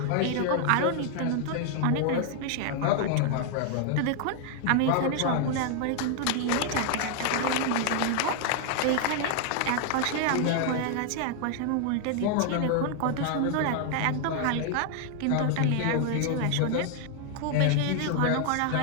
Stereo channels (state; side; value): different; both; correlation 0.00